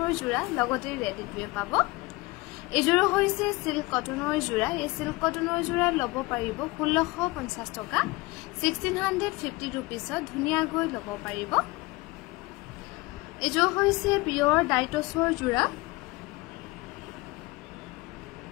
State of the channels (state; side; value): quieter; right; 22.4 dB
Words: জোৰা লগতে ৰেডি কৰি পাব এজোৰ হৈছে সিল্ক কটনৰ জোৰা এই সিল্ক কটনৰ জোৰা ল'ব পাৰিব 1650 টকা 1650 रुपीसত ধুনীয়াকৈ ল'ব পাৰিব এজোৰ হৈছে পিয়ৰ ডাইটছৰ জোৰা